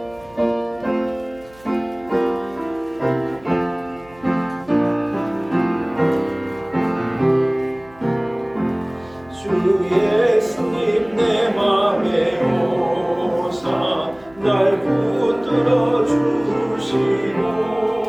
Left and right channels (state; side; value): noise; right; hum, 26 dB below the sound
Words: 예수님 내 맘에 오사 날 붙들어 주시고